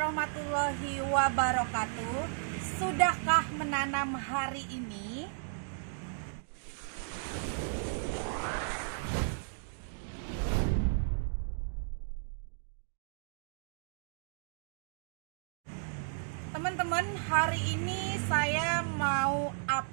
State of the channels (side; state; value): left; silent; digital silence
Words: wabarakatuh. Sudahkah menanam hari ini? Teman-teman, hari ini saya mau